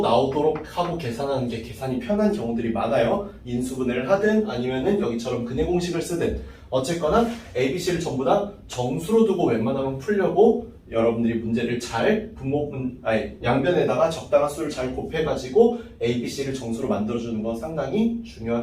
나오도록 하고 계산하는 게 계산이 편한 경우들이 많아요. 인수분해를 하든 아니면은 여기처럼 근해 공식을 쓰든 어쨌거나 ABC를 전부 다 정수로 두고 웬만하면 풀려고 여러분들이 문제를 잘 양변에다가 적당한 수를 잘 곱해가지고 ABC를 정수로 만들어주는 건 상당히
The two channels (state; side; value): identical; both; correlation 1.00